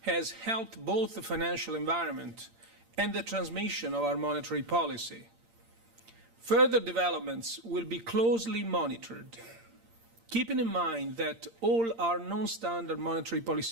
has helped both the financial environment and the transmission of our monetary policy. Further developments will be closely monitored, keeping in mind that all our non-standard monetary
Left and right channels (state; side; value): late; left; 8.7 ms